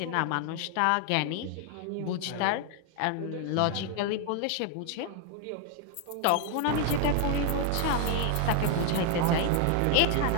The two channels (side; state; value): both; different; correlation 0.00